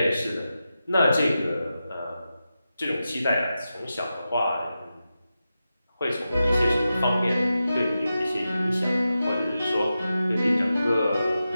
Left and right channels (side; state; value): both; inverted; correlation -0.91